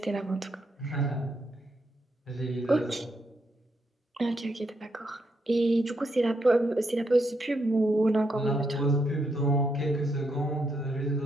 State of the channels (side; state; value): both; normal; correlation 0.79